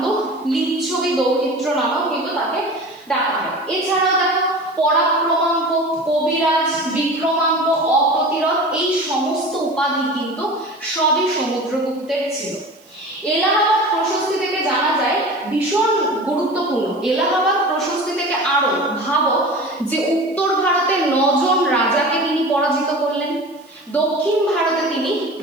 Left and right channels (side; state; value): right; noise; hiss, 30 dB below the sound